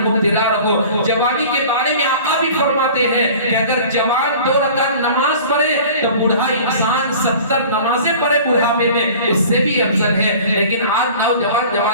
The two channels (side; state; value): both; inverted; correlation -0.43